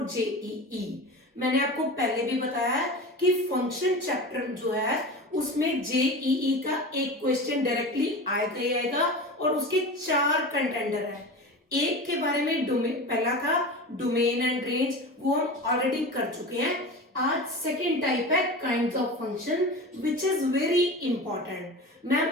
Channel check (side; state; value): both; normal; correlation 0.30